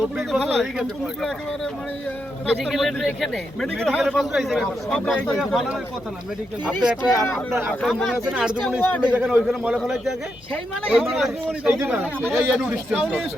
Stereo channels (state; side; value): noise; left; hum, 28 dB below the sound